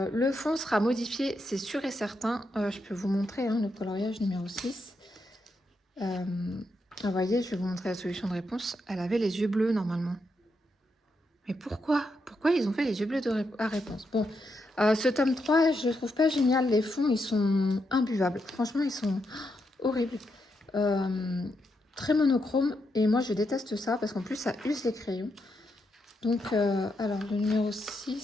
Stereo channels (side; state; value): both; normal; correlation 0.82